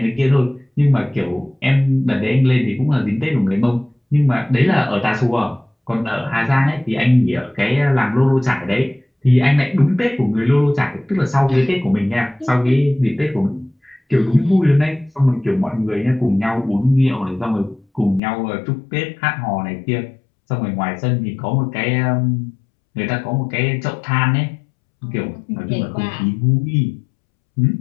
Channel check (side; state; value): right; drops out; at 18.2 s